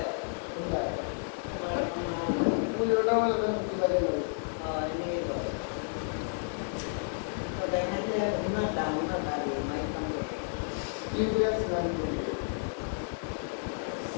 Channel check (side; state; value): right; silent; 57 dB below the other